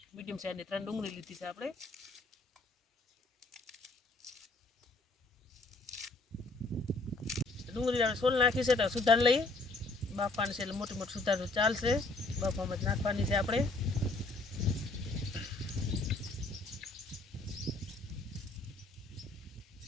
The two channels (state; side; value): quieter; right; 3.1 dB